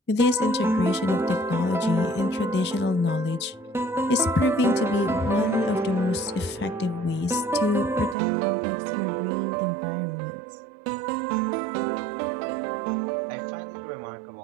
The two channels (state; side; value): drops out; left; at 8.2 s